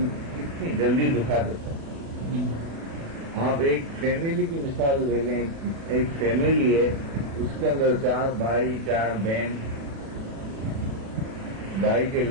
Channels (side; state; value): left; late; 36 ms